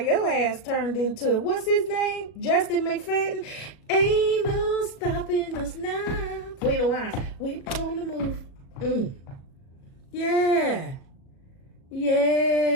your ass turned into, what's his name? Justin McFadden. Ain't no stopping us now. Queen of Wands, we on the move. Yeah.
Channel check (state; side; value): late; right; 37 ms